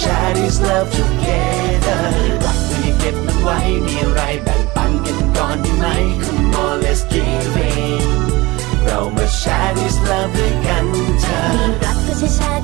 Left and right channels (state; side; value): quieter; left; 21.8 dB